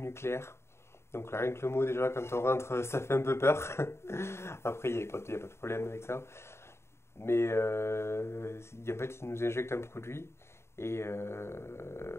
Donc là, rien que le mot déjà, quand on rentre, ça fait un peu peur. Après, il y a pas de problème avec ça. Mais en fait, ils nous injectent un produit et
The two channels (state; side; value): late; right; 0.13 ms